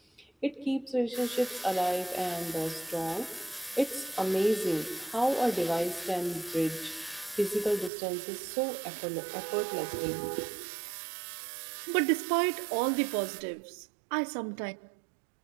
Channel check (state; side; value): drops out; left; at 7.9 s